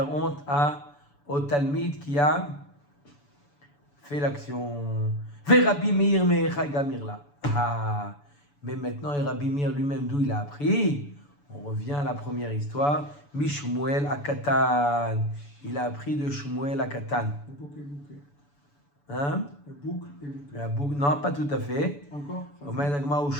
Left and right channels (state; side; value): late; right; 7.0 ms